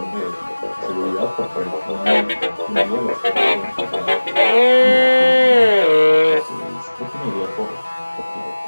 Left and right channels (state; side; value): inverted; both; correlation -1.00